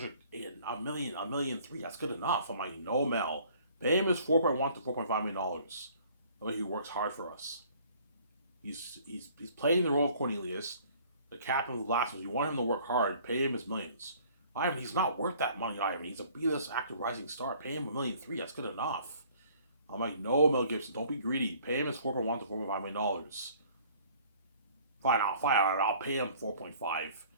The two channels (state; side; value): inverted; both; correlation -0.55